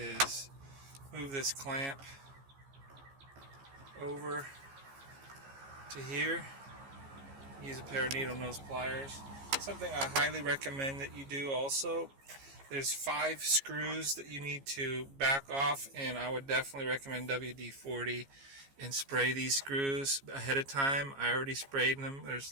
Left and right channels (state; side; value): late; left; 15 ms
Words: move this clamp over to here. Use a pair of needle nose pliers. Something I highly recommend that you do also. There's 5 screws that you need to back off, and I would definitely recommend WD-40 and spray these screws ahead of time. I already sprayed them.